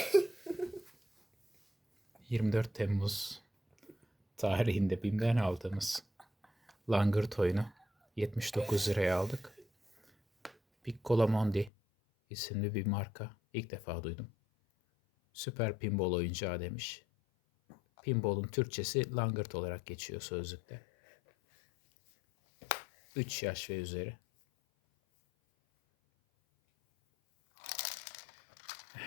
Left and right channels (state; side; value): drops out; right; at 11.7 s